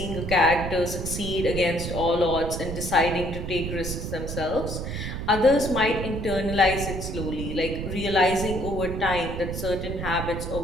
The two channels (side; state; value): right; noise; rumble, 5 dB below the sound